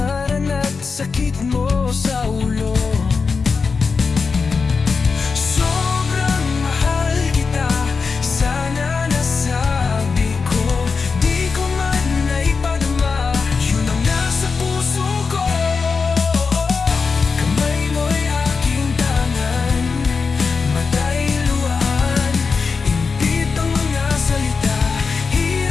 at sakit mo sa ulo. Sobrang mahal kita, sana nasabi ko, di ko man naipadama, yun ang nasa puso ko. Kamay mo'y aking tangan, mata'y luhaan, impit ang mga salita,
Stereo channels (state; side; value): quieter; right; 4.9 dB